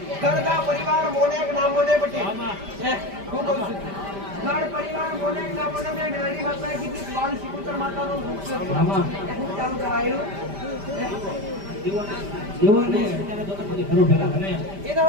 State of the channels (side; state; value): left; late; 5.1 ms